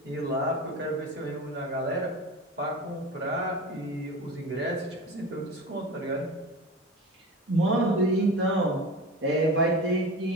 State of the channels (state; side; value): normal; both; correlation 0.31